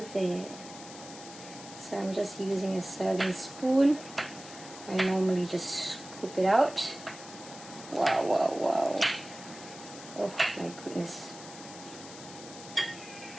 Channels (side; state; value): left; noise; hiss, 15 dB below the sound